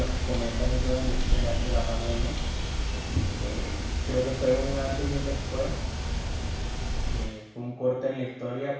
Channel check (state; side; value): identical; both; correlation 1.00